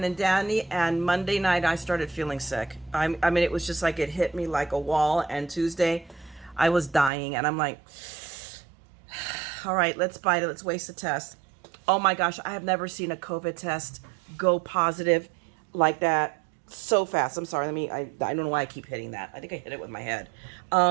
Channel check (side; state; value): left; drops out; at 7.1 s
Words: and dandy, and Monday night I started feeling sick. It was just like it hit me like a wall, and Tuesday I was dying, and I'm like, all right, let's bite it, let's waste the test. Oh my gosh, I have never seen a COVID test go positive like that so fast. I'm sorry, I don't know why I keep hitting that. I think I hit it with my head.